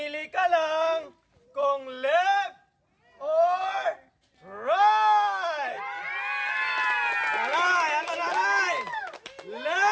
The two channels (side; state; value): both; identical; correlation 1.00